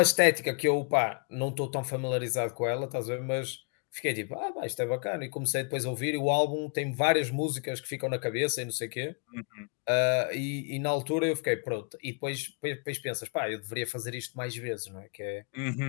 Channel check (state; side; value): quieter; right; 37.6 dB